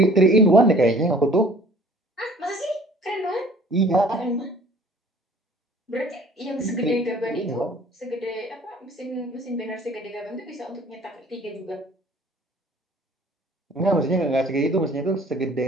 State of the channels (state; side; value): normal; both; correlation 0.53